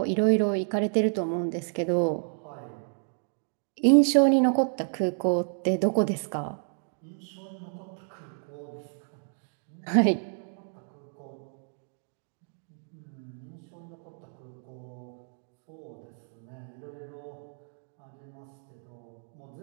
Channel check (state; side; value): silent; left; 58 dB below the other